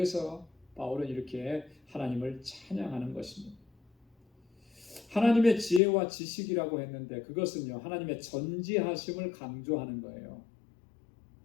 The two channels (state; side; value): drops out; right; at 5.8 s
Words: 바울은 이렇게 하나님을 찬양하는 것입니다. 하나님의 지혜와 지식이라고 했는데 그것은요, 하나님의 전지하심을 강조하는 거예요.